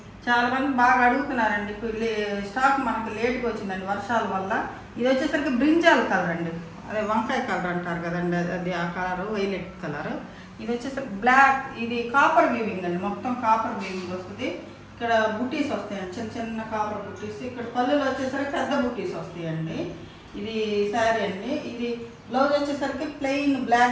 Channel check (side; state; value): both; identical; correlation 1.00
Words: చాలా మంది బాగా అడుగుతున్నారండి. స్టాక్ మనకు లేట్గా వచ్చిందండి వర్షాల వల్ల. ఇది వచ్చేసరికి బ్రింజాల్ కలర్ అండి, అదే వంకాయ కలర్ అంటారు కదండి, అది ఆ కలర్ వైలెట్ కలర్. ఇది వచ్చేసరికి బ్లాక్. ఇది కాపర్ వీవింగ్ అండి, మొత్తం కాపర్ వీవింగ్ వస్తుంది. ఇక్కడ బుటీస్ వస్తాయండి, చిన్న చిన్న కాపర్ బుటీస్. ఇక్కడ పళ్ళులో వచ్చేసరికి పెద్ద బుటీస్ వస్తాయండి. ఇది శారీ అండి. ఇది బ్లౌజ్ వచ్చేసరికి ప్లెయిన్